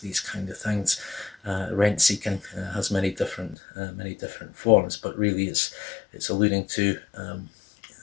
these kind of things. Rent seeking has many different forms, but really it's alluding to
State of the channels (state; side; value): drops out; right; at 3.6 s